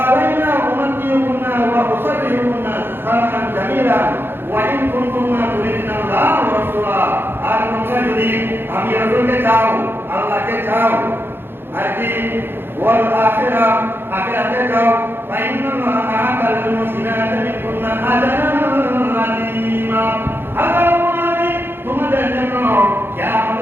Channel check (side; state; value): left; late; 0.10 ms